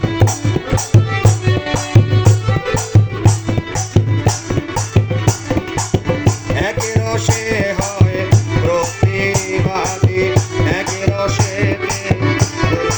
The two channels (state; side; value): identical; both; correlation 1.00